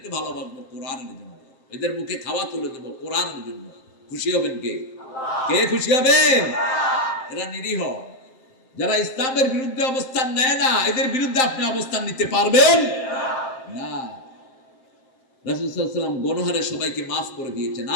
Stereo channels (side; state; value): right; late; 7.7 ms